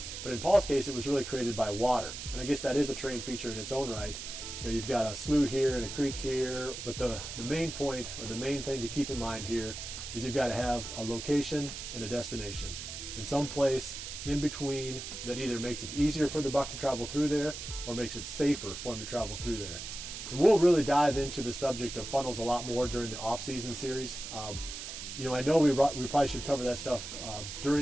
but in Paul's case, it was really created by water. And I guess that is a terrain feature in its own right. You know, you've got a slough here and a creek here, but the main point, or the main thing to keep in mind here, is you've got to have a location and a destination. In some place in between that either makes it easier for the buck to travel through there, or makes it safer for him to travel through there. And we'll really dive into the subject of funnels a lot more during the off-season series. You know, I know we probably should cover that stuff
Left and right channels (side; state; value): right; noise; hiss, 8 dB below the sound